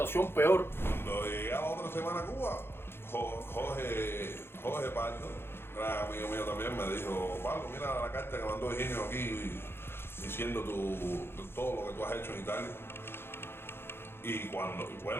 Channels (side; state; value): right; late; 0.11 ms